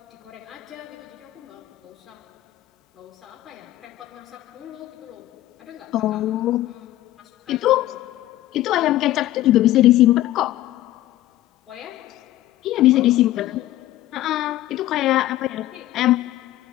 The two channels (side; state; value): right; quieter; 15.0 dB